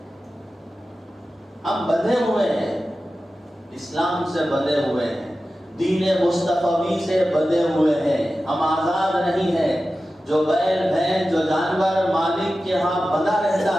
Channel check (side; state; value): both; normal; correlation 0.94